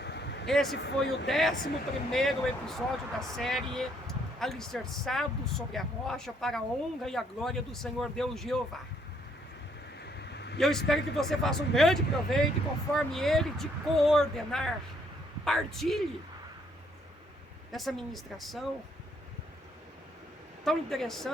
Esse foi o 11º episódio da série Alicerçado sobre a Rocha, para a honra e a glória do Senhor Deus Jeová. E eu espero que você faça um grande proveito, e conforme Ele te coordenar, compartilhe essa ministração tão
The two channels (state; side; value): normal; both; correlation 0.69